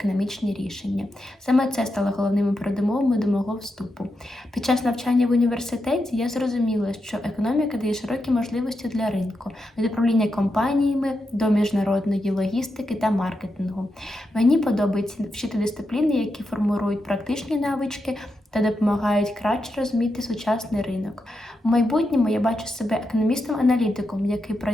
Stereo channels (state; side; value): normal; both; correlation 0.86